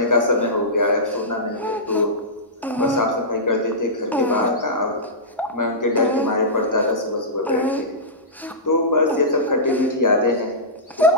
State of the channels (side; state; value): both; normal; correlation -0.17